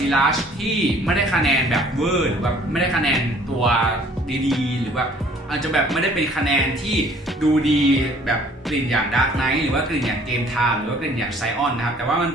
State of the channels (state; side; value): normal; both; correlation 0.56